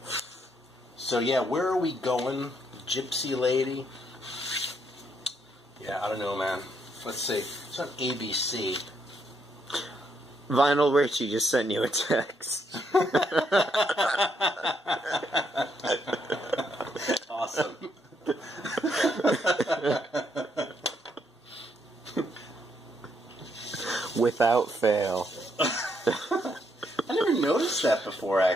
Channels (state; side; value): normal; both; correlation 0.75